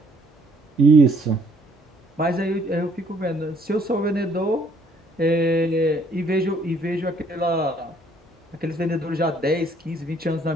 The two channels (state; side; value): normal; both; correlation 0.63